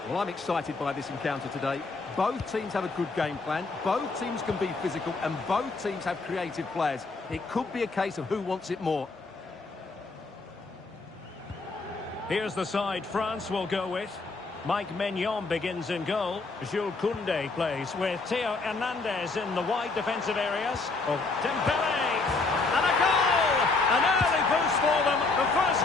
Well, I'm excited by this encounter today. Both teams have a good game plan, both teams can be physical, and both teams have creative players. It could be a case of who wants it more. Here's the side France will go with. Mike Maignan begins in goal. Jules Koundé plays with Theo Hernandez in the wide defensive areas. Dembélé, and a goal! An early boost for them. The first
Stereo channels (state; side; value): quieter; right; 3.8 dB